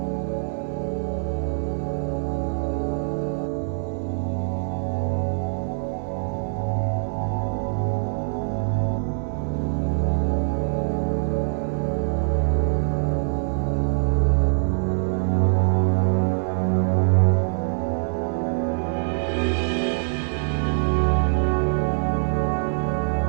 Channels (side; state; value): left; silent; digital silence